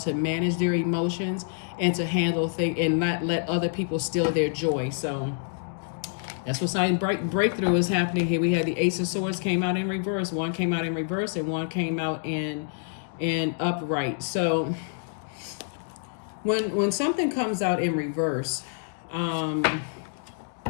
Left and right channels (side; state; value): right; silent; digital silence